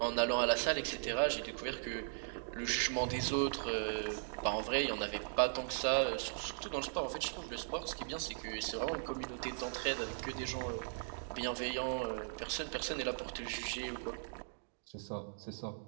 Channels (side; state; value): left; silent; digital silence